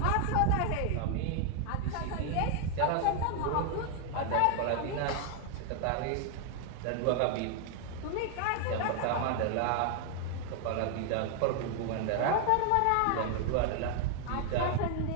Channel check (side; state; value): both; different; correlation 0.00